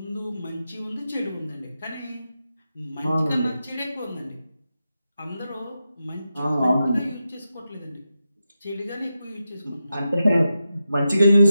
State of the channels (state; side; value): inverted; both; correlation -0.90